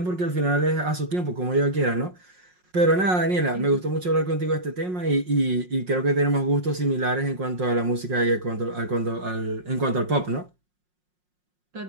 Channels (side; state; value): left; late; 5.5 ms